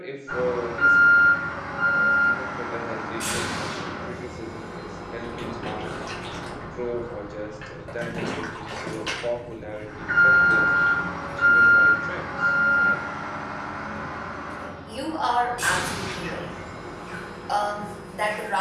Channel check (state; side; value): identical; both; correlation 1.00